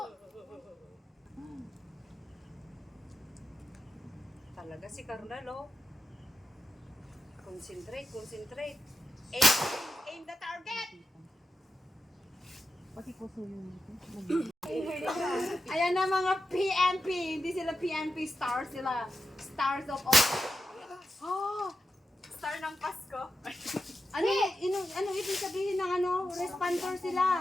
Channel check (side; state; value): both; normal; correlation 0.89